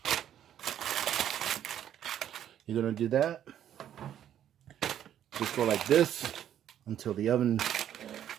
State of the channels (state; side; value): quieter; left; 10.5 dB